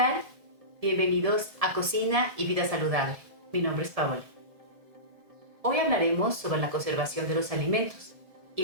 Bienvenidos a Cocina y Vida Saludable. Mi nombre es Paola. Hoy hablaremos sobre la conservación de los alimentos y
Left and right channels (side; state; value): left; late; 1.7 ms